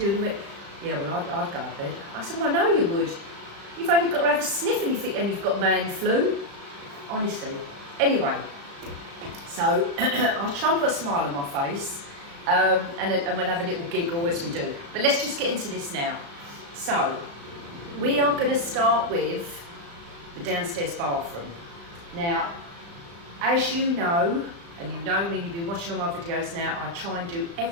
And he went, yeah, well, I'd go to bed. I said, well, I know you would. You've only got to have a sniff and you think, and you've got man flu. Honestly. Anyway, so I'll try and put a smile on my face, and we'll have a little giggle as we do. But let's just get into this now. So, we are going to start with the downstairs bathroom. Now, as you know, and you know me, you've been watching all my videos now, I try and do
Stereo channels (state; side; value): late; left; 35 ms